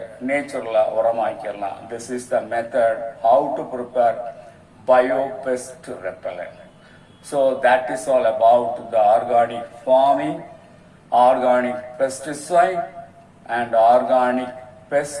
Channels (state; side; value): identical; both; correlation 1.00